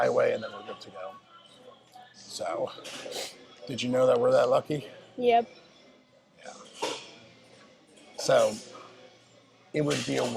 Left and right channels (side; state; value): both; identical; correlation 1.00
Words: and then we're good to go. So, did you know that we're that lucky? Yep. Yeah. So, it would be a